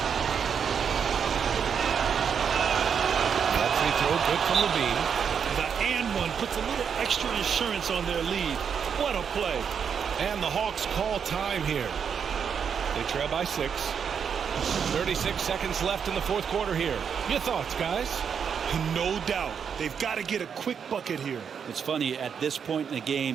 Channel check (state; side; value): quieter; left; 7.1 dB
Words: Good from Levine. The and one puts a little extra insurance on their lead. What a play. And the Hawks call time here. They trail by 6. 36 seconds left in the fourth quarter here. Your thoughts, guys? No doubt. They've got to get a quick bucket here. It's funny, at this point in the